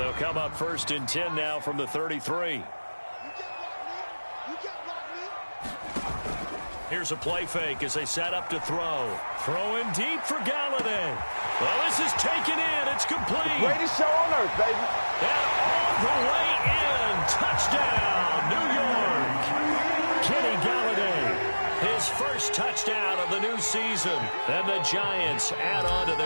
come up 1st and 10 now from the 33. Here's a play fake as they set up to throw. Throwing deep for Galladay. Well, this is taken in. It's complete. Greatest show on earth, baby. And all the way in. Touchdown, New York. Kenny Galladay. His first touchdown of the new season. And the Giants add on to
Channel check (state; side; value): inverted; both; correlation -1.00